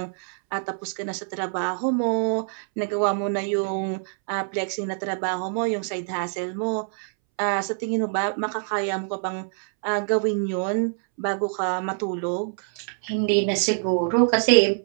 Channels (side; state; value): left; silent; 62 dB below the other